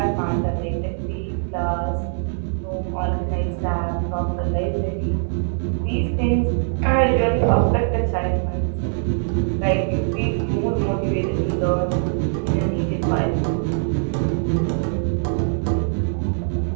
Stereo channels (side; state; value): left; silent; 61 dB below the other